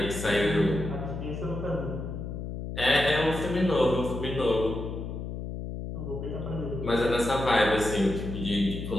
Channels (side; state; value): left; noise; hum, 6 dB below the sound